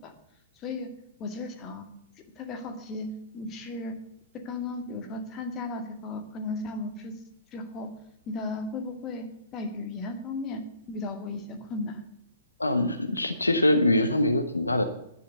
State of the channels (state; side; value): inverted; both; correlation -0.60